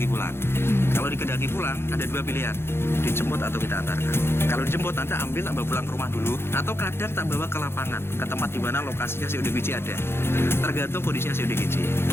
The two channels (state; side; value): late; right; 0.12 ms